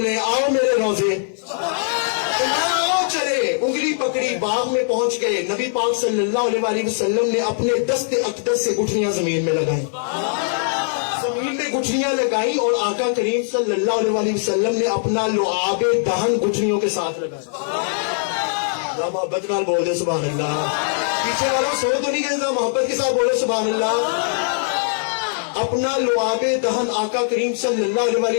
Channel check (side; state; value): right; silent; 59 dB below the other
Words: آؤ میرے روزے, آؤ چلے, انگلی پکڑی, باغ میں پہنچ گئے. نبی پاک صلی اللہ علیہ وسلم نے اپنے دست اقدس سے گٹھلیاں زمین میں لگائیں, زمین میں گٹھلیاں لگائیں, اور آقا کریم صلی اللہ علیہ وسلم نے اپنا لعاب دہن گٹھلیوں کے ساتھ لگایا. محبت نال بول دے سبحان اللہ. پیچھے والوں سو تو نہیں گئے, محبت کے ساتھ بولے سبحان اللہ. اپنا لعاب دہن آقا کریم صلی اللہ